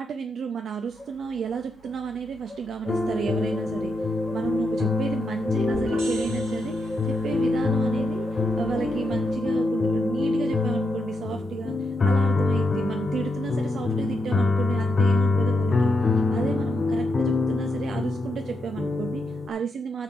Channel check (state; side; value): normal; both; correlation 0.83